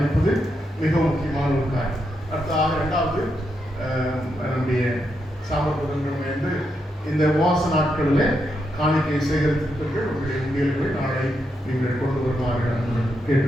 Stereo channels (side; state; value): both; normal; correlation 0.82